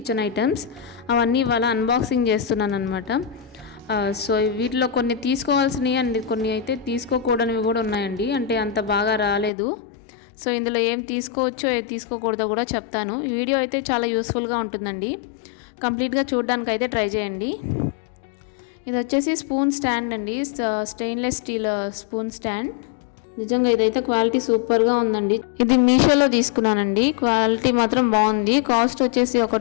ఐటమ్స్. అవన్నీ ఇవాళ అన్బాక్సింగ్ చేస్తున్నాను అనమాట. సో వీటిలో కొన్ని తీసుకోవాల్సినవి అండ్ కొన్ని అయితే తీసుకోకూడనివి కూడా ఉన్నాయండి. అంటే అంత బాగా రాలేదు. సో ఇందులో ఏం తీసుకోవచ్చో ఏం తీసుకోకూడదో కూడా చెప్తాను. ఈ వీడియో అయితే చాలా యూస్ఫుల్గా ఉంటుందండి. కంప్లీట్గా చూడడానికి అయితే ట్రై చేయండి. ఇది వచ్చేసి స్పూన్ స్టాండ్ అండి, స్టెయిన్లెస్ స్టీల్ స్పూన్ స్టాండ్. నిజంగా ఇదైతే క్వాలిటీ సూపర్గా ఉందండి. ఇది మీషోలో తీసుకున్నానండి. క్వాలిటీ మాత్రం బాగుంది. కాస్ట్ వచ్చేసి ఒక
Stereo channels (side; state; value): right; drops out; at 9.5 s